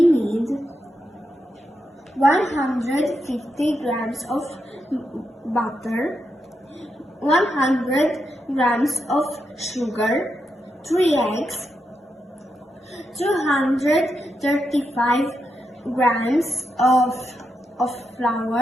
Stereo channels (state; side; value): normal; both; correlation 0.84